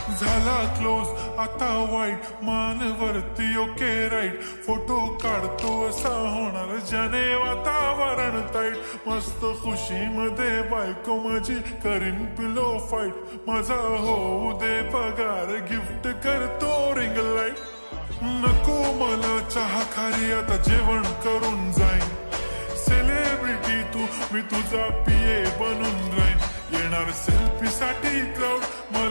झाला क्लोज आता वाईट, मान वरती ओके राईट. फोटो काढतो असा होणार ज्याने वातावरण ताईट. मस्त खुशी मध्ये बायको माझी करीन पिलो फाईट. माझा होऊ दे पगार गिफ्ट करतो रिंग लाईट. नको मला चहा खारी आता जेवण करून जाईन. सेलिब्रिटी तू मी तुझा पिये बनून राहीन. येणार सेल्फी साठी क्राऊड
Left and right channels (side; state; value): both; inverted; correlation -1.00